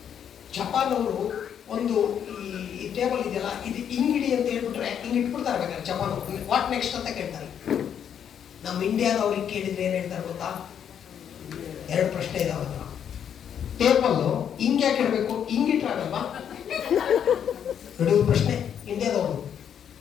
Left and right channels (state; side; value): quieter; right; 8.7 dB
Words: ಜಪಾನ್ ಅವರು ಒಂದು ಈ ಟೇಬಲ್ ಇದೆಯಲ್ಲ ಇದು ಹಿಂಗಿಡಿ ಅಂತ ಹೇಳ್ಬಿಟ್ರೆ ಹಿಂಗೆ ಇಟ್ಬಿಡ್ತಾರೆ. ಬೇಕಾದ್ರೆ ಜಪಾನ್ ವಾಟ್ ನೆಕ್ಸ್ಟ್ ಅಂತ ಕೇಳ್ತಾರೆ. ನಮ್ಮ ಇಂಡಿಯಾದವ್ರಿಗೆ ಕೇಳಿದ್ರೆ ಏನ್ ಹೇಳ್ತಾರೆ ಗೊತ್ತಾ? ಎರಡು ಪ್ರಶ್ನೆ ಇದಾವೆ. ಟೇಬಲ್ ಹಿಂಗೆ ಯಾಕೆ ಇಡಬೇಕು? ಹಿಂಗಿಟ್ರಾಗಲ್ವಾ? ನೋಡಿ ಪ್ರಶ್ನೆ ಇಂಡಿಯಾದವರು.